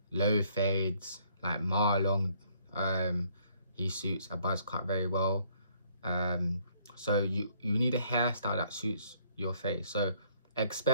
low fades, like Marlon, he suits a buzz cut very well. So you need a hairstyle that suits your face. So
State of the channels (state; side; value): inverted; both; correlation -0.65